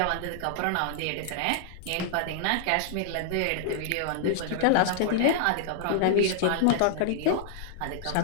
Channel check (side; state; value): both; different; correlation -0.01